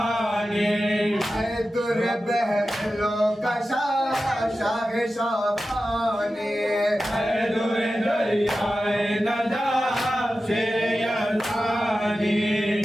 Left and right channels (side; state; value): both; normal; correlation 0.93